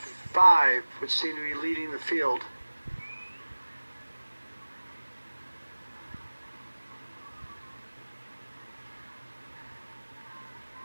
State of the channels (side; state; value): both; inverted; correlation -1.00